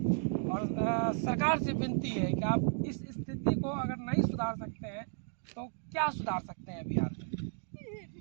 और सरकार से विनती है कि आप इस स्थिति को अगर नहीं सुधार सकते हैं तो क्या सुधार सकते हैं बिहार में?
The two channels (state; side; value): silent; left; digital silence